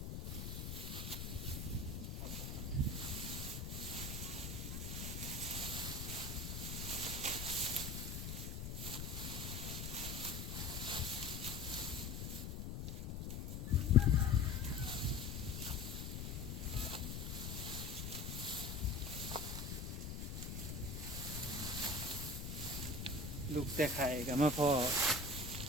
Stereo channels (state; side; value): noise; left; rumble, 5 dB below the sound